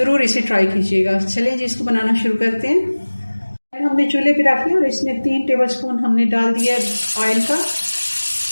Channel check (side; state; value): both; inverted; correlation -1.00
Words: इसे ट्राई कीजिएगा। चलें जी इसको बनाना शुरू करते हैं। हमने चूल्हे पे रख लिया और इसमें 3 टेबलस्पून हमने डाल दिया ऑयल का।